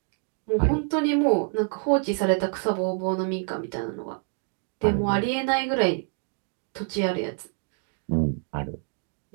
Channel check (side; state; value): left; quieter; 38.6 dB